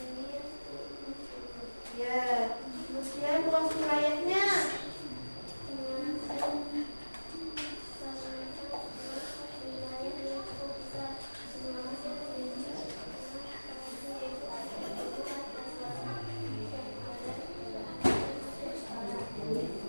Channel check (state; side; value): inverted; both; correlation -1.00